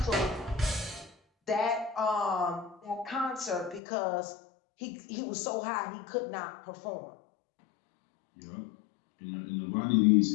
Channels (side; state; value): right; drops out; at 3.8 s